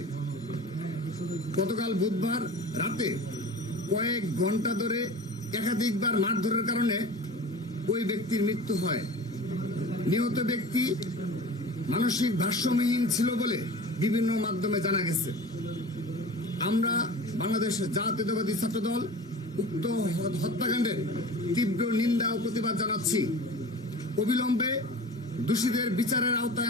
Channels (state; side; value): normal; both; correlation 0.38